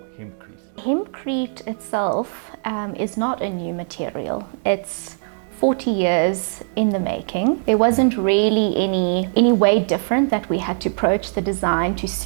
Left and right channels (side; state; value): left; silent; digital silence